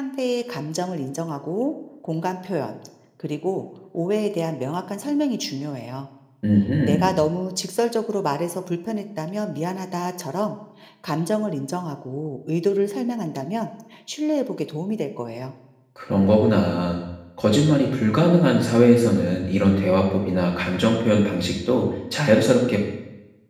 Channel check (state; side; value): identical; both; correlation 1.00